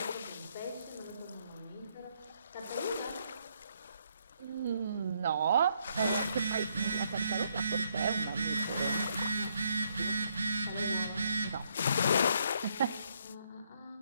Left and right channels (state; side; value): inverted; both; correlation -0.72